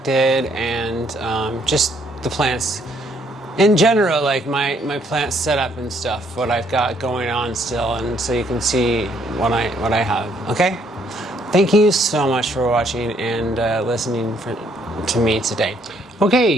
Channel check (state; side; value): normal; both; correlation 0.68